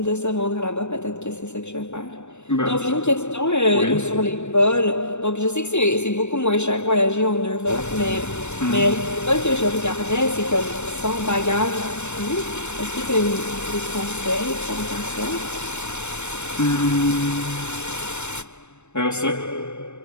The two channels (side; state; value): right; late; 0.82 ms